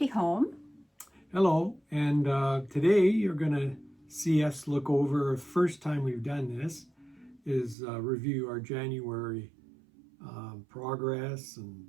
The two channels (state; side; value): drops out; left; at 7.8 s